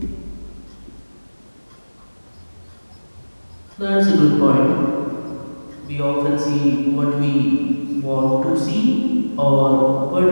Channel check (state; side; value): inverted; both; correlation -1.00